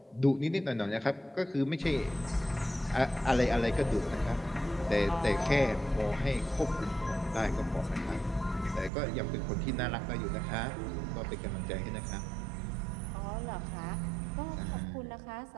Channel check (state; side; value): drops out; left; at 8.9 s